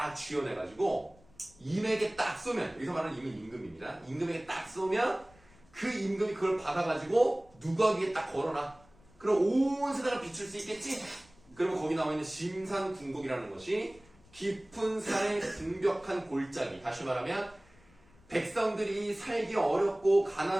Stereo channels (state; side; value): noise; left; rumble, 28 dB below the sound